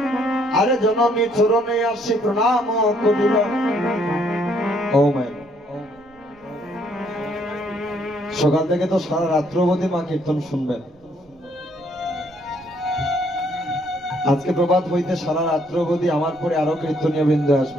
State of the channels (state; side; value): noise; right; rumble, 29 dB below the sound